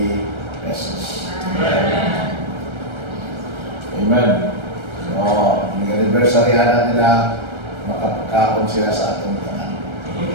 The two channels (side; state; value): left; late; 1.3 ms